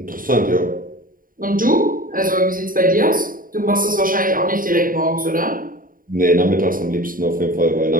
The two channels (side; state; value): left; late; 0.41 ms